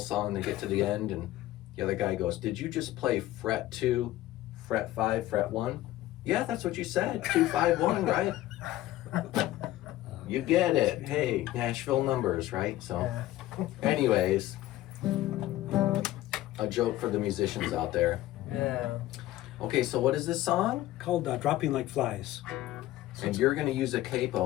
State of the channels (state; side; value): quieter; right; 15.2 dB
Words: song, they get to the end, and the other guy goes, did you just play fret 2, fret 5, fret 1? Yeah, that's what you said, 2-5-1, right? You get it. Hey, Nashville numbers, right? So, Yeah. anyways, a joke for the musicians out there. Yeah. Okay, so what is this song? Called Dropping Like Flies. And you're going to use a capo